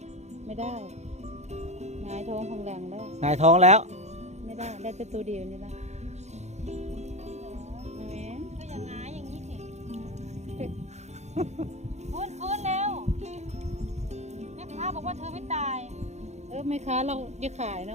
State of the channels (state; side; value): late; left; 0.33 ms